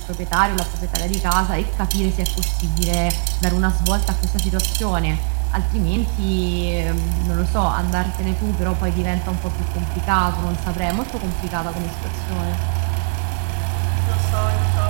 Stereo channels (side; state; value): left; silent; 59 dB below the other